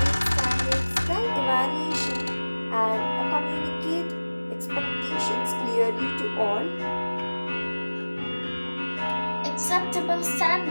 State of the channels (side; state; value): both; inverted; correlation -1.00